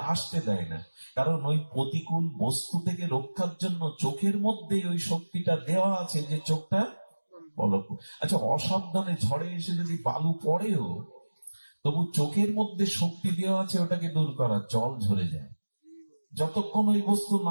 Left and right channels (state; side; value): inverted; both; correlation -1.00